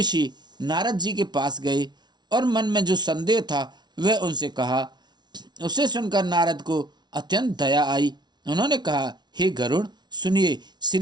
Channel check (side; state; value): left; late; 0.20 ms